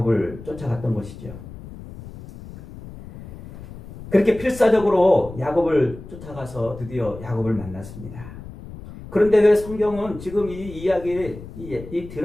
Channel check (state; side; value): noise; left; rumble, 14 dB below the sound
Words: 쫓아갔던 것이죠. 그렇게 필사적으로 야곱을 쫓아가서 드디어 야곱을 만났습니다. 그런데 왜 성경은 지금 이